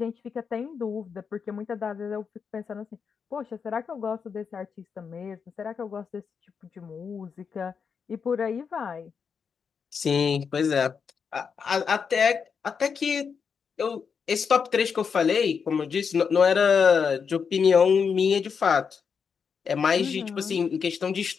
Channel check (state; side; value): quieter; right; 6.2 dB